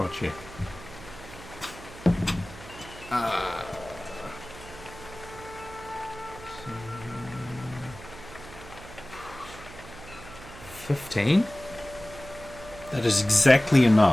check. Uh, 15? That is exactly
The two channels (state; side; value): noise; right; hum, 16 dB below the sound